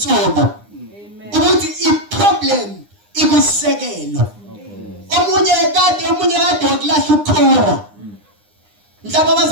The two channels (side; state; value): left; late; 9.8 ms